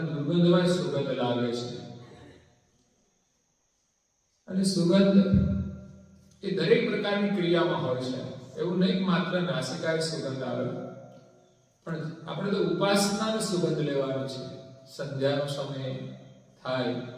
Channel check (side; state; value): both; identical; correlation 1.00